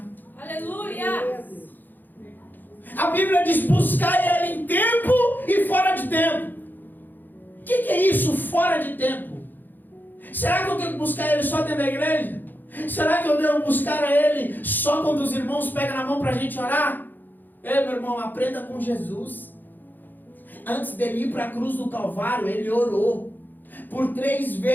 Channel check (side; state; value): right; late; 0.088 ms